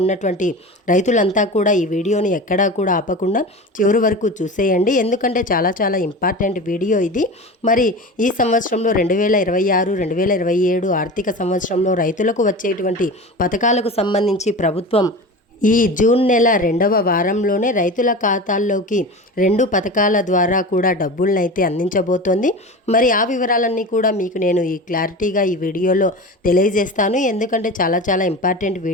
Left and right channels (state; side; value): normal; both; correlation 0.30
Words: రైతులంతా కూడా ఈ వీడియోని ఎక్కడా కూడా ఆపకుండా చివరి వరకు చూసేయండి. ఎందుకంటే చాలా ఇంపార్టెంట్ వీడియో ఇది. మరి ఈ సంవత్సరంలో 2026, 2027 ఆర్థిక సంవత్సరంలో రైతులకు వచ్చేటువంటి పథకాలకు సంబంధించి ప్రభుత్వం ఈ జూన్ నెల 2వ వారంలోనే రైతుల ఖాతాల్లోకి 2 పథకాల ద్వారా కూడా డబ్బులను అయితే అందించబోతోంది. మరి ఆ వివరాలన్నీ కూడా మీకు నేను ఈ క్లారిటీగా ఈ వీడియోలో తెలియజేస్తాను. ఎందుకంటే చాలా ఇంపార్టెంట్